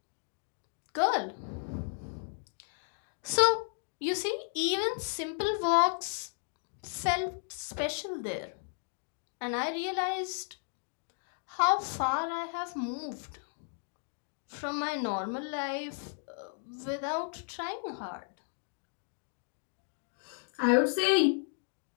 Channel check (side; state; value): right; silent; 55 dB below the other